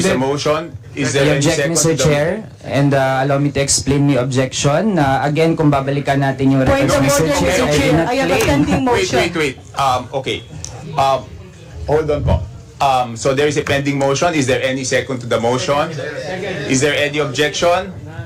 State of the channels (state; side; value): identical; both; correlation 1.00